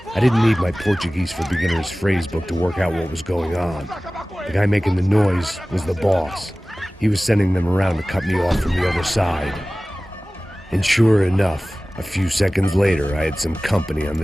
I didn't need my Portuguese for Beginners phrasebook to work out what was going on. The guy making the noise was the boss. He was sending them around to cut me off from the other side. And sure enough, a few seconds later, I had some company on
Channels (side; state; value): both; normal; correlation 0.98